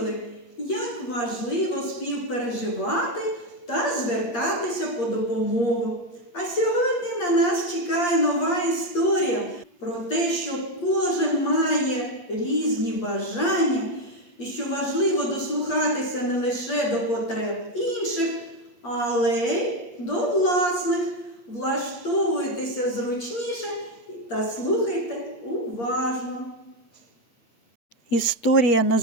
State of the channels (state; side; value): late; right; 8.5 ms